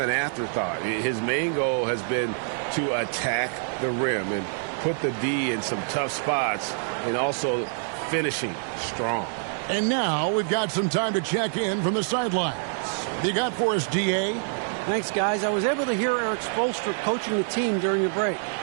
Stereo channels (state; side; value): silent; left; digital silence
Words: an afterthought. His main goal has been to attack the rim and put the D in some tough spots and also finishing strong. And now we've got some time to check in from the sidelines. What you got for us, DA? Thanks, guys. I was able to hear Eric Spoelstra coaching the team during the break.